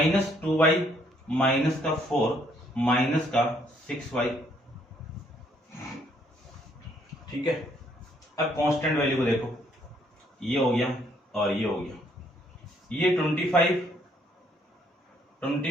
2y माइनस का 4 माइनस का 6y, ठीक है। अब कांस्टेंट वैल्यू को देखो, ये हो गया और ये हो गया, ये 25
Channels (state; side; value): normal; both; correlation 0.67